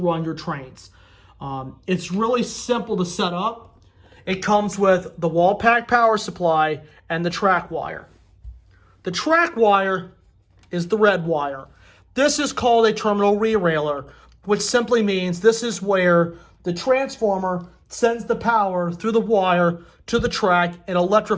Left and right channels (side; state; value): both; identical; correlation 1.00